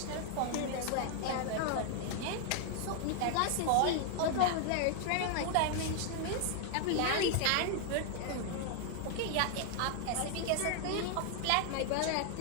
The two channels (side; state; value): both; different; correlation 0.00